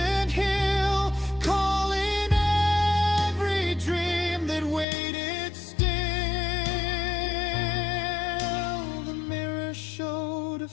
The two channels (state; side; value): drops out; right; at 4.9 s